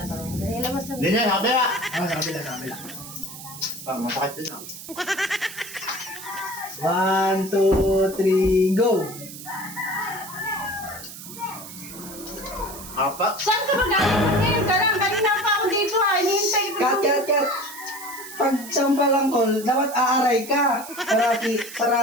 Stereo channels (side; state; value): right; noise; hiss, 13 dB below the sound